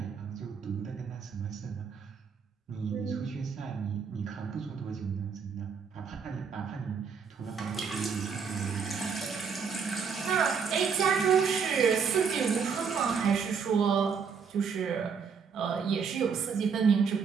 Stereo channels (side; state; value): left; quieter; 6.1 dB